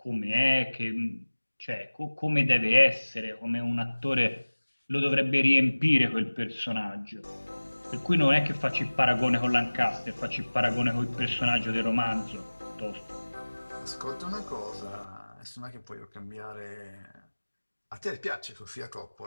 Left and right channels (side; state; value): both; inverted; correlation -1.00